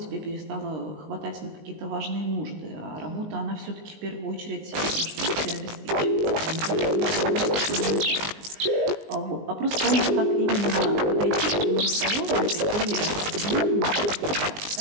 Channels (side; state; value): left; late; 19 ms